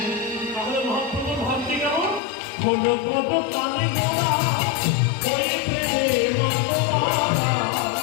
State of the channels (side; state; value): right; drops out; at 2.2 s